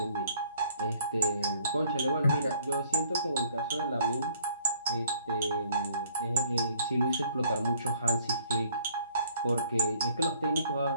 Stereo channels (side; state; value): both; inverted; correlation -0.61